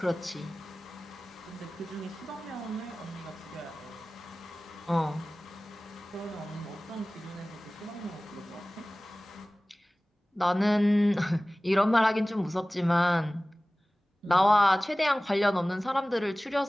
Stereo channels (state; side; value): normal; both; correlation 0.98